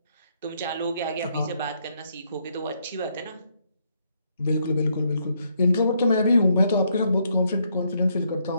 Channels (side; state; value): both; inverted; correlation -0.74